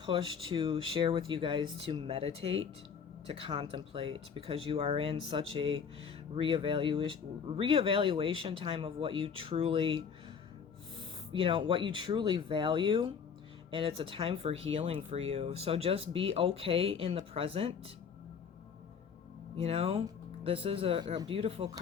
to share with you guys to meditate, to contemplate, because you are in such a reevaluation time of what you truly, what you truly value. And it's a time for healing for you. So just be okay in the present. This is a beautiful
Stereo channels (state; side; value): quieter; right; 6.6 dB